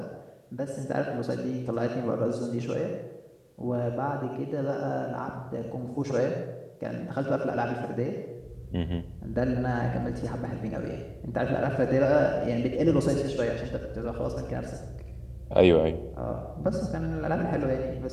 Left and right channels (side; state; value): both; identical; correlation 1.00